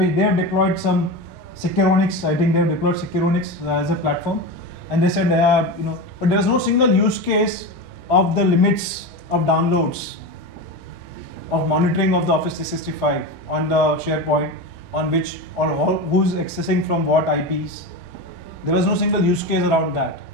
have deployed some Securonics. I think they have deployed Securonics as a platform. And they said, but there was no single use case of the limits of downloads, of monitoring of the Office 365 on the SharePoint, on which or who's accessing from what IPs. There was no single use case around that.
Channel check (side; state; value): both; normal; correlation 0.22